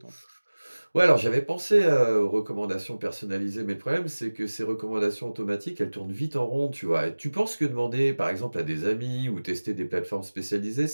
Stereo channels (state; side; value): inverted; both; correlation -1.00